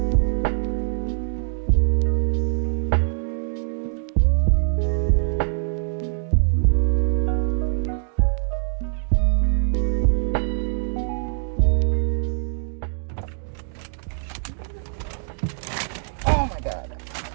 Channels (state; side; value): silent; left; digital silence